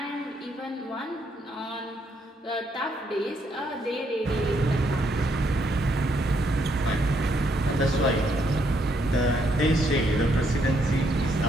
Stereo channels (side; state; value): both; normal; correlation 0.74